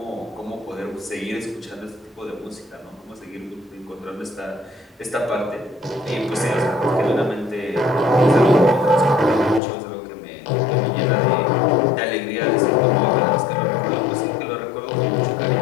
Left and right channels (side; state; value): right; drops out; at 9.6 s